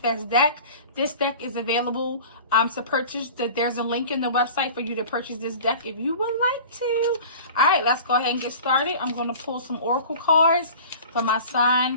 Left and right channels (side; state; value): both; inverted; correlation -0.41